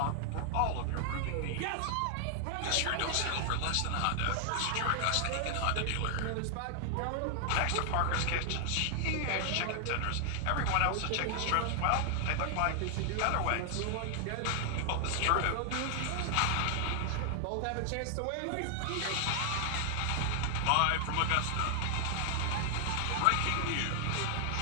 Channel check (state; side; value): different; both; correlation 0.00